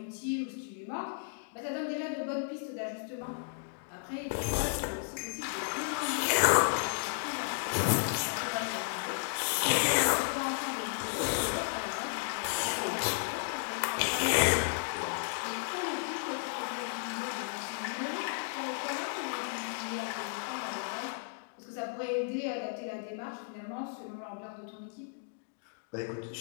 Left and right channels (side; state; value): right; silent; digital silence